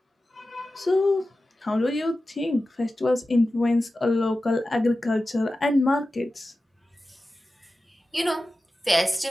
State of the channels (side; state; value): both; normal; correlation 0.94